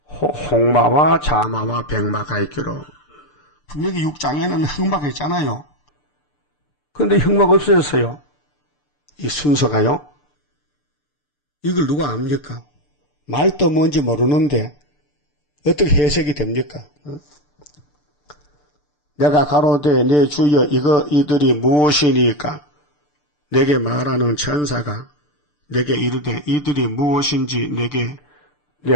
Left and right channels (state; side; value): late; right; 6.8 ms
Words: 홍마와 자마와 백마가 있기로. 분명히 6장에는 흑마가 있잖아요. 그런데 흑마가 없어졌어요. 이 순서가요. 이걸 누가 압니까? 말도 뭔지 모르는데 어떻게 해석이 됩니까? 내가 가로되 내 주여 이들이 무엇이니까? 내게 말하는 천사가 내게 이르되 이들이 무엇인지